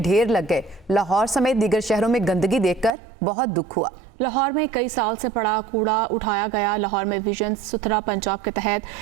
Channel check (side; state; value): left; drops out; at 2.9 s